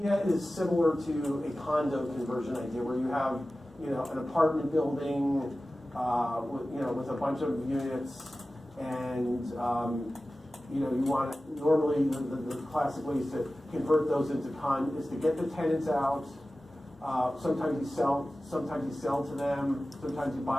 idea is similar to a condo conversion idea where you have, an apartment building with a bunch of units, and you want normally the classic ways to convert those into is to get the tenants out. Sometimes you sell to them. Sometimes you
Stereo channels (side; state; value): both; normal; correlation 0.96